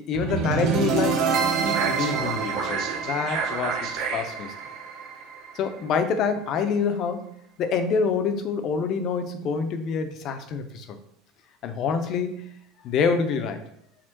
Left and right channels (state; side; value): normal; both; correlation 0.39